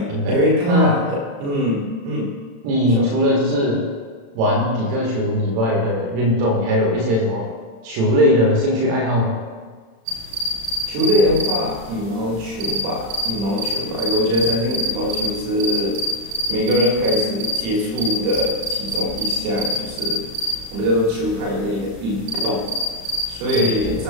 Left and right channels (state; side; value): late; left; 35 ms